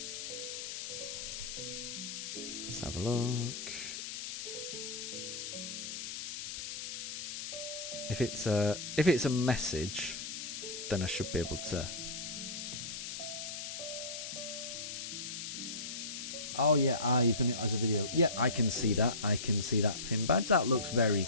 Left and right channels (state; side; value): noise; left; hiss, 6 dB below the sound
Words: Let's have a look. If it's a message, then I should be able to. Oh yeah, you've done it as a video. Yeah, I can see that. I can see that pin badge. That looks very